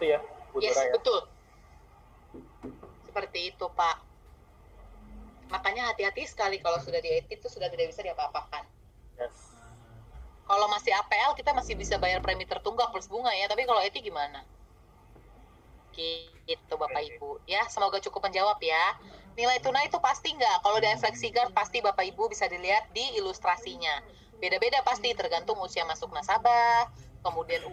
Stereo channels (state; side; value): identical; both; correlation 1.00